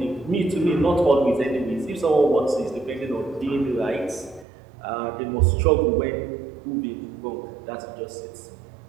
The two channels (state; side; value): drops out; left; at 4.5 s